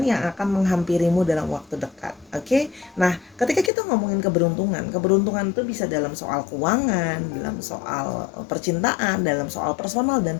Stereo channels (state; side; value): drops out; right; at 3.7 s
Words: yang akan menghampirimu dalam waktu dekat. Oke, nah ketika kita ngomongin keberuntungan itu bisa dalam soal keuangan, dalam soal percintaan, dalam soal personal dan